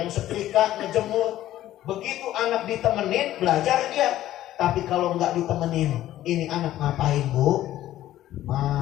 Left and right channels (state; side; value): quieter; right; 13.7 dB